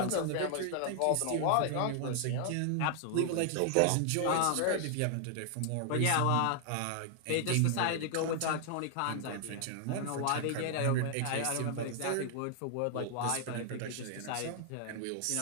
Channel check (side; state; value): both; different; correlation 0.00